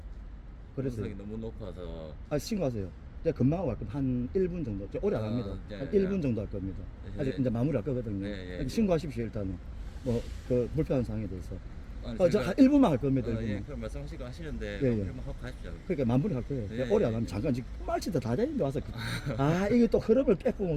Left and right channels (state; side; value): identical; both; correlation 1.00